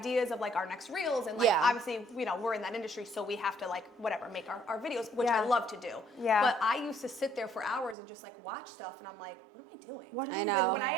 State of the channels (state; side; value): drops out; left; at 8.0 s